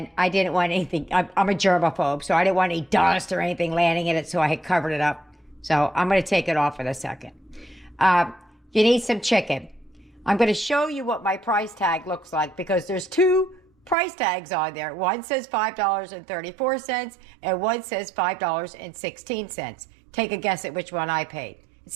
I didn't want anything. I'm a germaphobe, so I didn't want any dust or anything landing in it, so I had covered it up. So I'm gonna take it off in a second. You need some chicken. I'm gonna show you what my price tag looks like because there's two price tags on there. One says $5.34 and one says $5.16. Take a guess at which one I paid.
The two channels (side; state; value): left; drops out; at 14.0 s